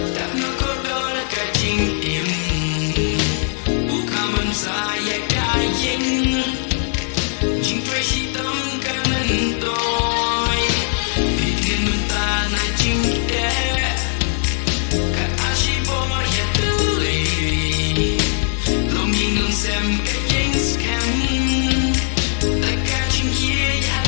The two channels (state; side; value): silent; right; 66 dB below the other